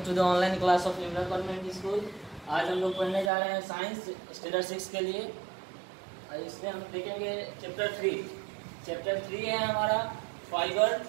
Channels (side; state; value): left; drops out; at 3.3 s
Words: the online class of liberal convent school. आज हम लोग पढ़ने जा रहे हैं साइंस स्टैंडर्ड 6 के लिए। इसमें हम देखेंगे चैप्टर 3। चैप्टर 3 है हमारा फाइबर